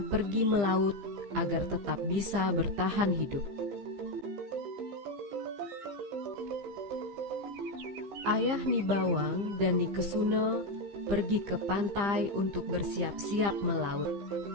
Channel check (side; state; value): left; late; 15 ms